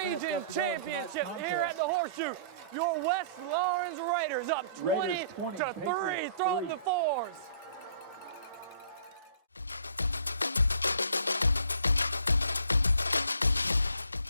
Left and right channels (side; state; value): both; inverted; correlation -0.54